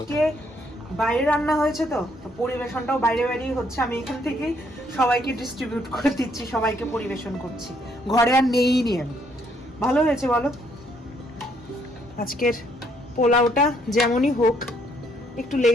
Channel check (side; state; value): both; normal; correlation 0.69